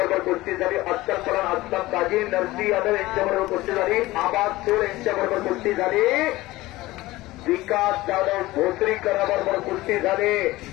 कुस्ती झाली. अख्तर परान अस्लम काजी, नरसी यादव यांच्याबरोबर कुस्ती झाली. आबाद सोड यांच्याबरोबर कुस्ती झाली. विकास जाधव भोसरीकराबरोबर कुस्ती झाली.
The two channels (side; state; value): right; quieter; 18.5 dB